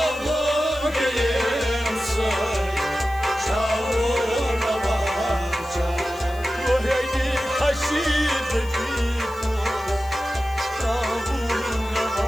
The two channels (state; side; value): noise; left; hiss, 22 dB below the sound